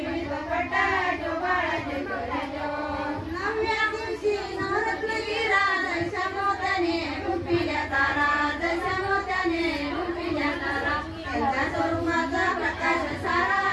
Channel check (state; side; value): identical; both; correlation 1.00